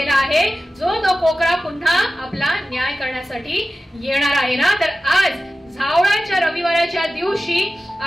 आहे, जो तो कोकरा पुन्हा आपला न्याय करण्यासाठी येणार आहे ना. तर आज झावळाच्या रविवाराच्या दिवशी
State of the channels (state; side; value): normal; both; correlation 0.94